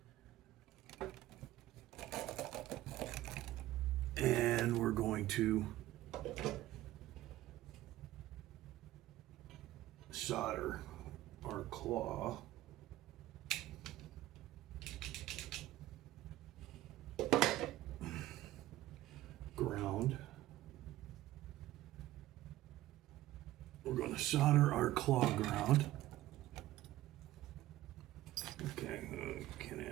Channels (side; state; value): left; quieter; 15.4 dB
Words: And we're going to solder our claw. Ground. We're going to solder our claw ground. Okay, can't